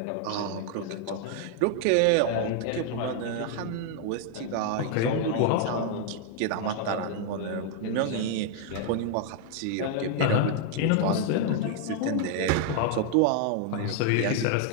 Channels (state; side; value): different; both; correlation 0.00